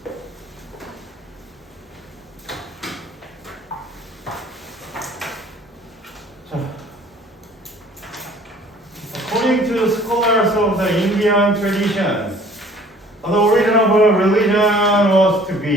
자, according to scholars of the Indian traditions, the origin of a religion was to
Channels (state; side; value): normal; both; correlation 0.53